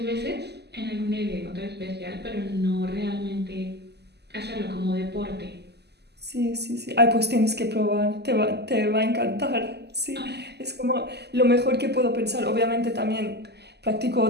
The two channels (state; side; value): late; left; 0.49 ms